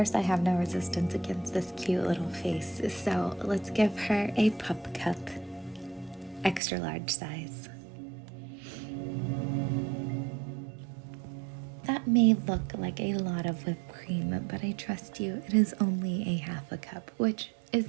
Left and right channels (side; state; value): left; drops out; at 6.6 s